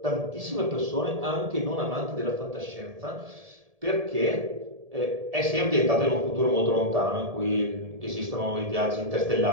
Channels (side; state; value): left; late; 1.7 ms